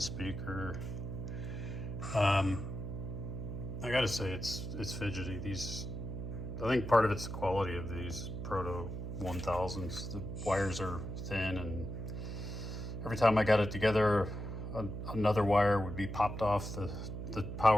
speaker. I gotta say it's fidgety. I think part of it's the quality of these Proto 1000s. The wires are thin, and every time I got it together, another wire would be popped off the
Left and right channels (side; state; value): right; noise; hum, 6 dB below the sound